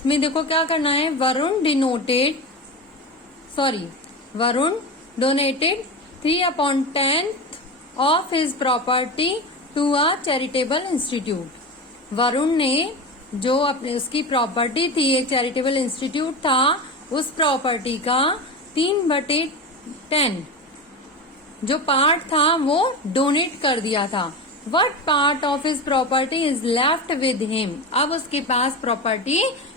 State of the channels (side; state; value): both; normal; correlation 0.24